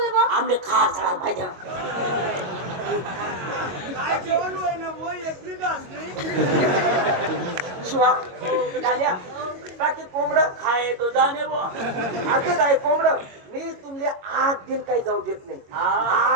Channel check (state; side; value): late; left; 22 ms